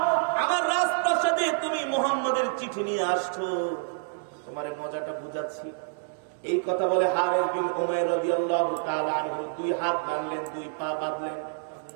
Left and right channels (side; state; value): left; silent; digital silence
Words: আমার রাজপ্রাসাদে তুমি মুহাম্মাদের চিঠি নিয়ে আসছো? তোমার মজাটা বুঝাচ্ছি। এই কথা বলে হারিস বিন উমাইর রাদিয়াল্লাহু তাআলা আনহু দুই হাত বাঁধলেন, দুই পা বাঁধলেন,